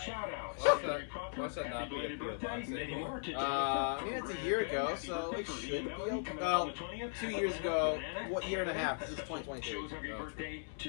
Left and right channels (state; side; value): silent; right; 52 dB below the other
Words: out. Why should that not be a Happy P.O. box? birthday, many more to I mean, it's a year ago, so it should be okay. Well, 2 years ago, what year and a half? This is 2022. Joe's Hungry birthday